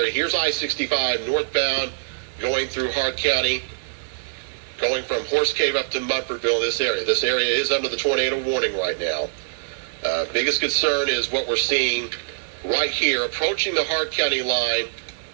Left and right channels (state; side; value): silent; left; 63 dB below the other